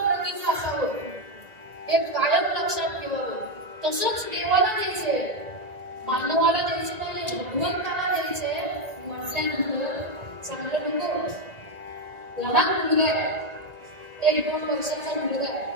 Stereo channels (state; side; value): late; left; 1.9 ms